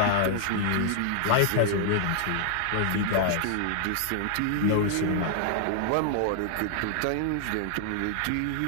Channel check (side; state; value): both; different; correlation 0.00